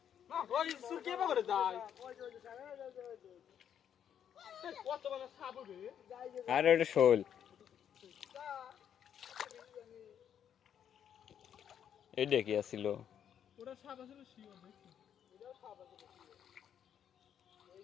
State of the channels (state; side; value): quieter; right; 9.1 dB